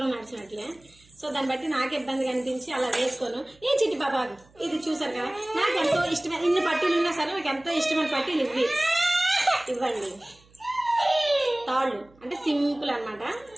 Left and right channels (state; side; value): noise; right; hum, 29 dB below the sound